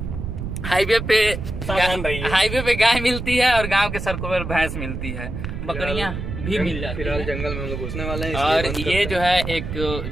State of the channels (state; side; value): noise; right; rumble, 6 dB below the sound